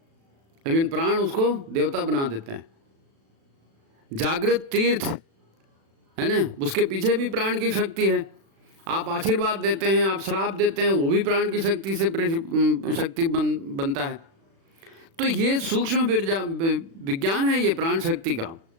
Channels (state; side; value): late; left; 36 ms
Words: लेकिन प्राण उसको देवता बना देते हैं। जागृत तीर्थ है ना, उसके पीछे भी प्राण की शक्ति है। आप आशीर्वाद देते हैं, आप श्राप देते हैं, वो भी प्राण की शक्ति से शक्ति बनता है। तो ये सूक्ष्म विज्ञान है, ये प्राण शक्ति का।